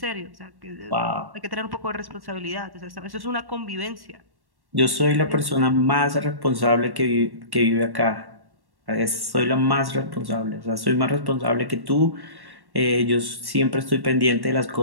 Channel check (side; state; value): left; late; 1.1 ms